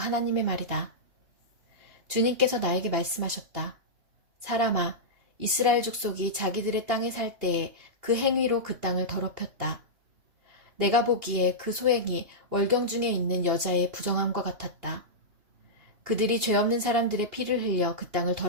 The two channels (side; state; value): left; late; 2.8 ms